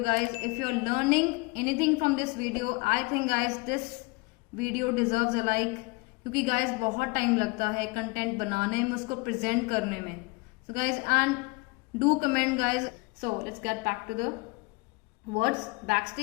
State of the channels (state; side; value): quieter; right; 26.0 dB